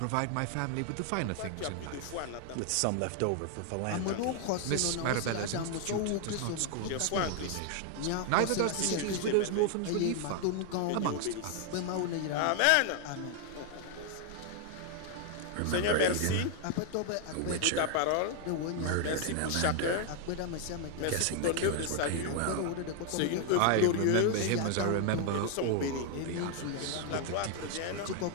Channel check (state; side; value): different; both; correlation 0.00